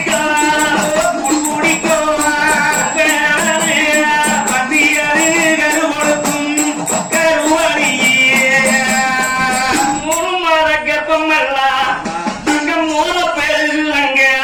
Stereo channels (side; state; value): both; identical; correlation 1.00